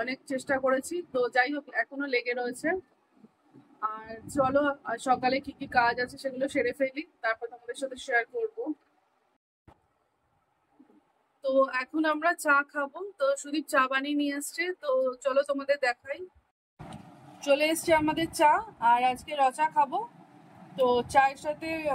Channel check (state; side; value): identical; both; correlation 1.00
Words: অনেক চেষ্টা করেছি, তো যাই হোক এখনো লেগে রয়েছে। আর চলো, আর সকালে কি কি কাজ আছে সেগুলো সেরে ফেলি, তারপর তোমাদের সাথে শেয়ার করব। তো এখন আমরা চা খাবো, তো সুদীপ চা বানিয়ে নিয়ে আসছে, তো চলো তোমাদের দেখাই। চলে এসছে আমাদের চা, আর আজকে রচা খাবো। তো চায়ের সাথে